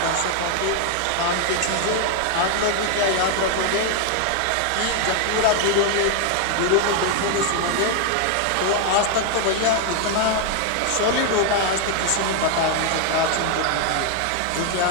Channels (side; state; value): both; different; correlation 0.00